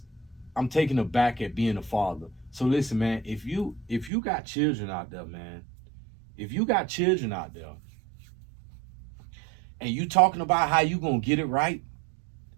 taken aback at being a father. So listen, man, if you got children out there, man, if you got children out there, and you talking about how you gonna get it right,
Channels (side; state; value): left; drops out; at 4.1 s